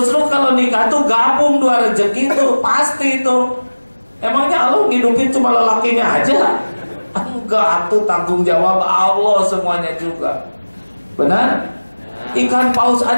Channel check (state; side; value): inverted; both; correlation -1.00